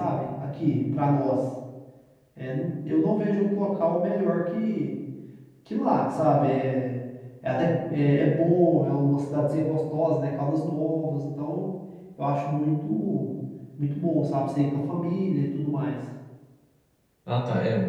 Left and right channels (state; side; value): identical; both; correlation 1.00